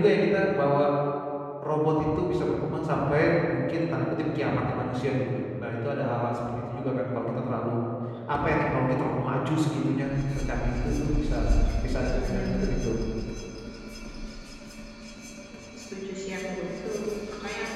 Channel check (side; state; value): both; identical; correlation 1.00